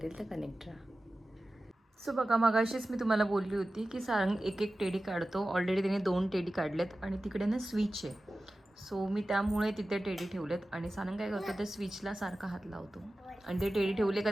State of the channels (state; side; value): normal; both; correlation 0.95